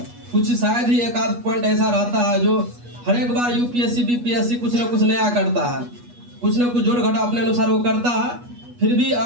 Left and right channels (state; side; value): late; left; 8.3 ms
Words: कुछ शायद ही एक आध पॉइंट ऐसा रहता है जो हर एक बार यूपीएससी बीपीएससी कुछ ना कुछ नया करता है, कुछ ना कुछ जोड़ घटा अपने अनुसार वो करता है। फिर भी